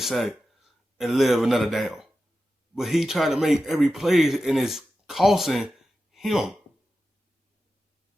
and live another down. But he trying to make every play and it's costing him.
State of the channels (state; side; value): normal; both; correlation 0.92